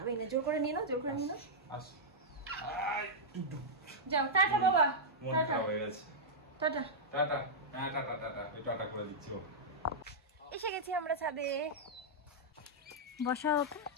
না, জোর করে নিয়ে নাও, জোর করে নিয়ে নাও। যাও, টাটা বাবা, টাটা হয়ে গেছে, টাটা টাটা, হ্যাঁ টাটা টাটা, এই টাটা করে দিচ্ছি। এসে গেছি আমরা ছাদে। বসা ওকে,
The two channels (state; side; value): normal; both; correlation -0.08